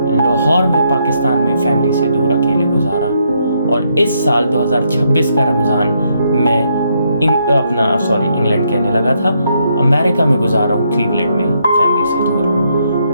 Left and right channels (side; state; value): both; inverted; correlation -0.76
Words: लाहौर में पाकिस्तान में फैमिली से दूर अकेले गुजारा। और इस साल 2026 का रमज़ान मैं इंग्लैंड कहने लगा था, अमेरिका में गुजारा हूँ, क्लीवलैंड में फैमिली से दूर।